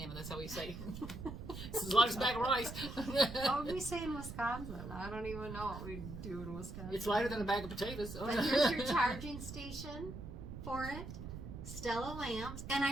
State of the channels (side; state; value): right; noise; rumble, 9 dB below the sound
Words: That's how we say. It's as light as a bag of rice. what would we say in Wisconsin? I don't even know what we do in Wisconsin. It's lighter than a bag of potatoes. But here's your charging station for it. Stella lamps, and